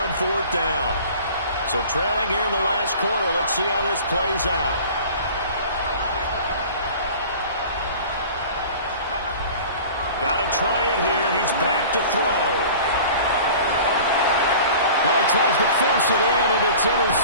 on 4th down. So trailing here in the last quarter. Let's see how this plays out. Got to try it here. He's back to throw. Well, he tries to force it in, and it's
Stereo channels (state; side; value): inverted; both; correlation -0.42